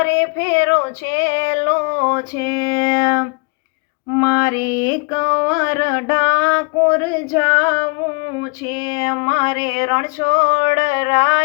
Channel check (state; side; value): quieter; right; 32.2 dB